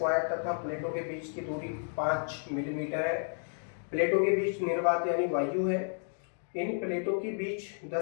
तथा प्लेटों के बीच की दूरी 5 मिलीमीटर है। प्लेटों के बीच निर्वात यानी वायु है। इन प्लेटों के बीच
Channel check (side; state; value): right; silent; 56 dB below the other